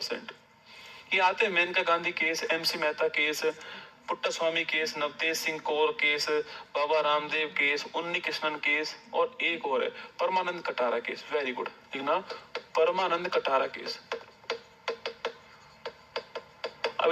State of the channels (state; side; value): identical; both; correlation 1.00